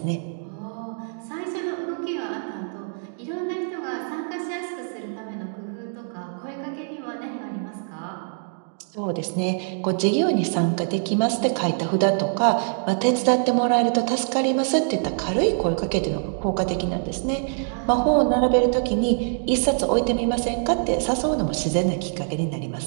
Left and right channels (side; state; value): left; silent; digital silence